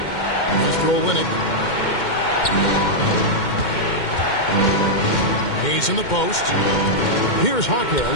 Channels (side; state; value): right; late; 2.1 ms